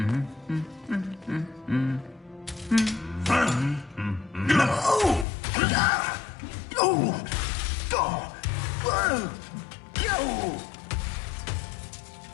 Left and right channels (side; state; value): right; drops out; at 5.2 s